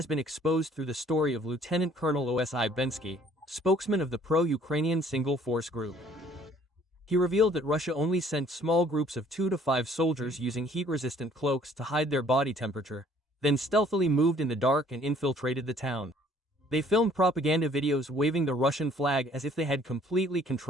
been exposed through the story of Lieutenant Colonel Osi Bensky, spokesman of the pro-Ukrainian single force group. He revealed that Russia only sent small groups of 2 to 5 soldiers using heat-resistant cloaks to hide their body temperature, then stealthily moved in the dark and infiltrated the town. They filmed propaganda videos waving the Russian flag as if they had completely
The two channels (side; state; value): both; normal; correlation 0.58